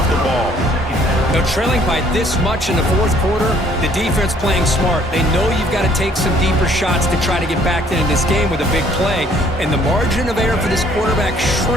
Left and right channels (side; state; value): both; normal; correlation 0.61